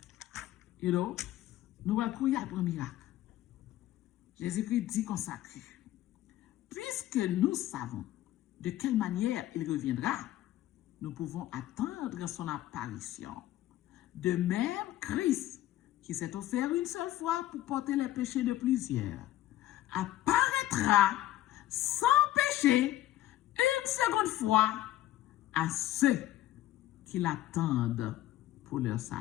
You know? Nous allons courir pour un miracle. Jésus-Christ dit consacré. Puisque nous savons de quelle manière il reviendra, nous pouvons attendre son apparition. De même, Christ, qui s'est offert une seule fois pour porter les péchés de plusieurs, apparaîtra sans péché une seconde fois à ceux qui l'attendent pour leur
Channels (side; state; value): right; quieter; 14.3 dB